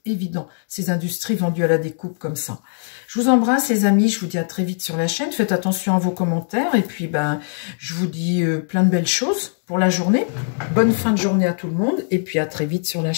évident. Ces industries vendues à la découpe comme ça. Je vous embrasse, les amis. Je vous dis à très vite sur la chaîne. Faites attention à vos commentaires. Et puis, ben, je vous dis plein de belles choses pour la journée. Bonne fin de journée à tout le monde. Et puis, à très vite sur la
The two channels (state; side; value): silent; right; digital silence